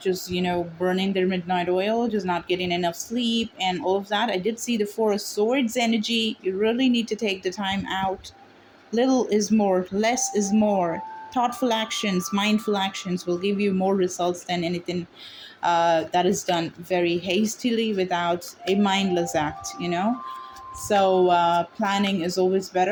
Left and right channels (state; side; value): identical; both; correlation 1.00